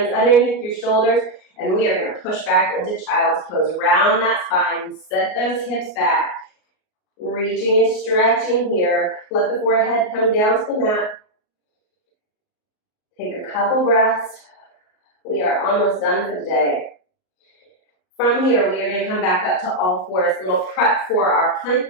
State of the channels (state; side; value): late; right; 38 ms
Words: underneath your shoulders, and we are going to push back into child's pose. Round that spine, set those hips back. Reaching and stretching here. Let the forehead come down to the mat. Take a couple breaths. We are almost done for the day. From here, we are going to come back up to all fours. A little prep for our plank